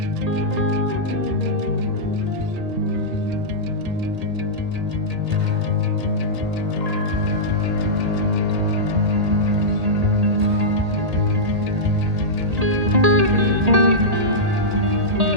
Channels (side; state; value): left; late; 1.8 ms